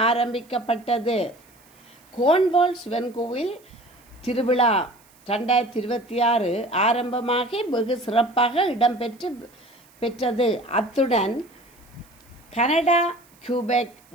ஆரம்பிக்கப்பட்டது. கோன்வால் சிவன் கோவில் திருவிழா 2026 ஆரம்பமாகி வெகு சிறப்பாக இடம்பெற்றது. அத்துடன் கனடா கியூபெக்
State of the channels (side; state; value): right; noise; hiss, 29 dB below the sound